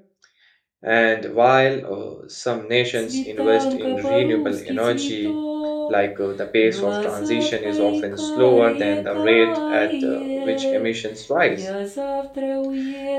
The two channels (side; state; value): both; identical; correlation 1.00